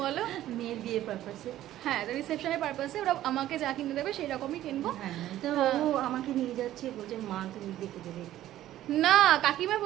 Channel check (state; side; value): quieter; left; 13.5 dB